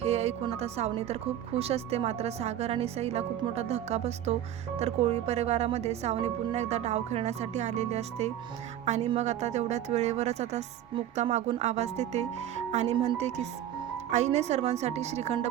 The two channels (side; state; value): left; quieter; 11.3 dB